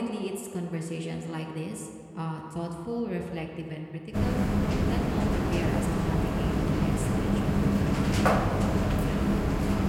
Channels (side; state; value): both; identical; correlation 1.00